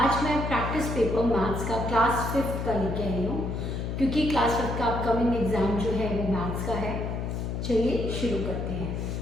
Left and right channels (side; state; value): left; noise; hum, 3 dB below the sound